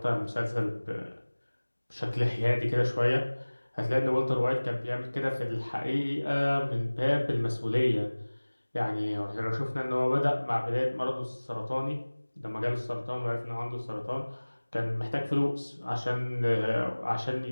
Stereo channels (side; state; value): both; inverted; correlation -1.00